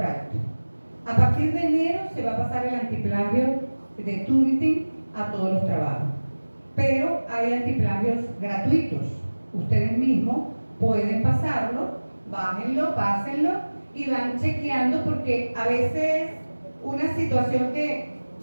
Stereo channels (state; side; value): inverted; both; correlation -1.00